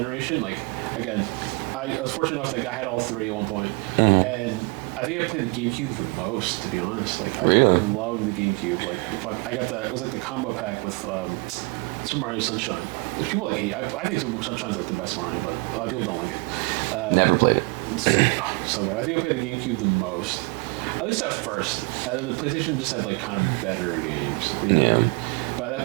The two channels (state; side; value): quieter; left; 27.8 dB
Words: Like again, I was fortunate enough that I had all 3 at one point, and I think I played the GameCube the most, to be honest. Like I loved the GameCube. Like I got it was like the combo pack with Super Mario Sunshine, which people like hate. I think Super Sunshine's like the best Mario, but a lot of people don't like it. Never played it. It's so good. I think I played the GameCube the most. At least at first, and then the PlayStation just had like kind of better games. You know what I mean? But